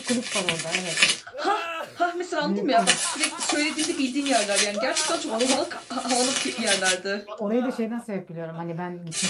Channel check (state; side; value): identical; both; correlation 1.00